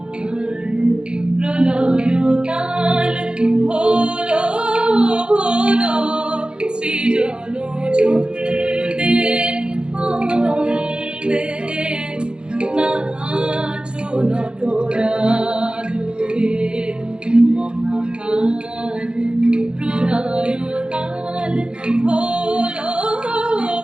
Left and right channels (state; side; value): late; left; 0.051 ms